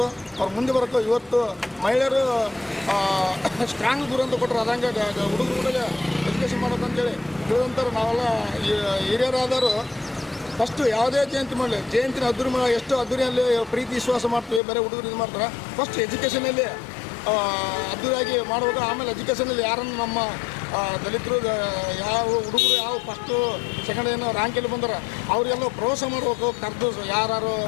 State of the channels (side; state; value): right; drops out; at 14.6 s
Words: ಅವ್ರು ಮುಂದೆ ಬರಬೇಕು. ಇವತ್ತು ಮಹಿಳೆಯರು ಸ್ಟ್ರಾಂಗ್ ದೂರ ಅಂತ ಕೊಟ್ಟರು, ಅದಂಗೆ ಹುಡುಗರಿಗೆ ಎಜುಕೇಷನ್ ಮಾಡಬೇಕು ಅಂತೇಳಿ ತಿಳಿದಂತಾರೆ. ನಾವೆಲ್ಲ ಹಿರಿಯರಾದವರು ಫಸ್ಟು ಯಾವುದೇ ಜಯಂತಿ ಮಾಡಲಿ, ಜಯಂತಿನ ಎಷ್ಟು ಅದ್ದೂರಿಯಲ್ಲಿ ಪ್ರೀತಿ ವಿಶ್ವಾಸ ಮಾಡ್ತೀವಿ, ಬೇರೆ ಹುಡುಗರು ಇದು ಮಾಡ್ತಾರೆ. ಫಸ್ಟ್ ಎಜುಕೇಷನಲ್ಲಿ ಅದ್ದೂರಿಯಾಗಿ ಮಾಡಬೇಕು. ಆಮೇಲೆ ಎಜುಕೇಷನಲ್ಲಿ ಯಾರನ್ನು ನಮ್ಮ ದಲಿತರು ಯಾವ ಹುಡುಗರು ಯಾವ ಫಸ್ಟು ಸೆಕೆಂಡ್ ಏನೋ ರ್ಯಾಂಕಲ್ಲಿ ಬಂದರೆ ಅವರಿಗೆಲ್ಲ ಪ್ರೋತ್ಸಾಹ ಮಾಡಬೇಕು. ಕರೆದು ಯಾರು